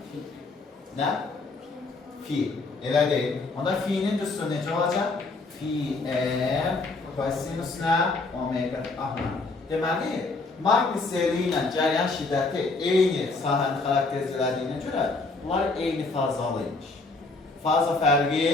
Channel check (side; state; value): right; quieter; 3.6 dB